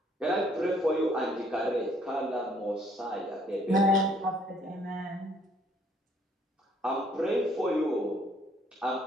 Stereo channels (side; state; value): both; normal; correlation 0.64